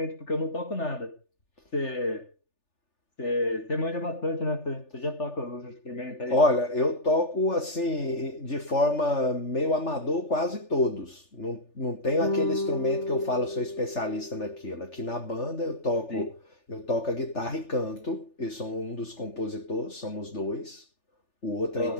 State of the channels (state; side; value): late; right; 3.4 ms